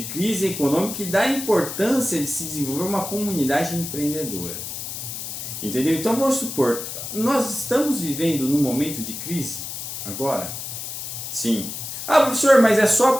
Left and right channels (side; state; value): left; noise; hiss, 7 dB below the sound